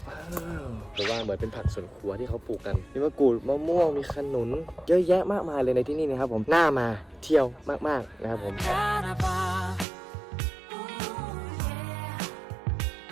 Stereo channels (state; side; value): drops out; left; at 9.9 s